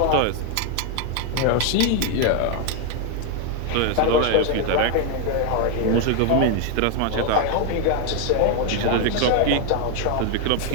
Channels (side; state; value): both; different; correlation 0.01